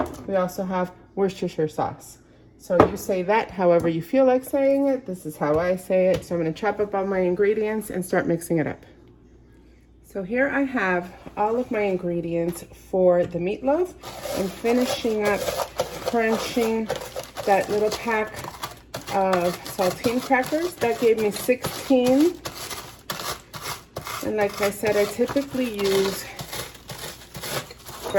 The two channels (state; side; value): identical; both; correlation 1.00